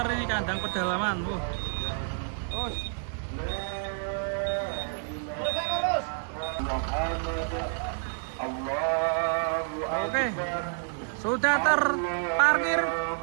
ini kandang pedalaman. Terus oke, sudah terparkir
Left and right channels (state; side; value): silent; left; digital silence